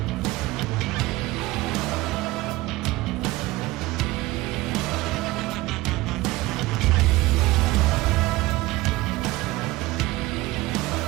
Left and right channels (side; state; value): left; quieter; 19.2 dB